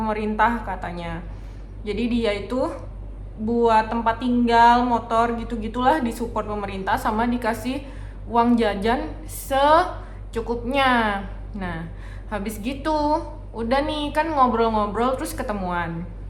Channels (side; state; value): both; identical; correlation 1.00